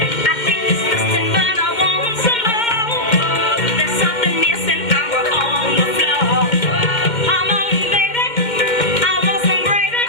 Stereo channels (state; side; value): late; right; 2.1 ms